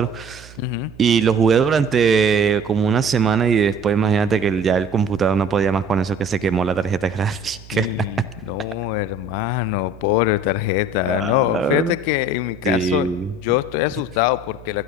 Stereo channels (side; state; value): right; noise; hum, 20 dB below the sound